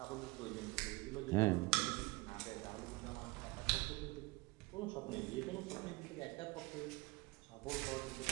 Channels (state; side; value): quieter; left; 23.9 dB